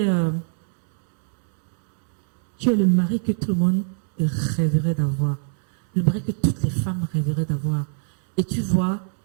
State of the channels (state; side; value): silent; left; 64 dB below the other